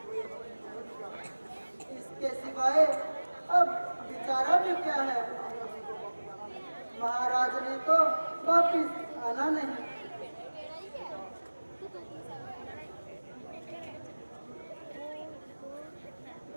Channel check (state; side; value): inverted; both; correlation -1.00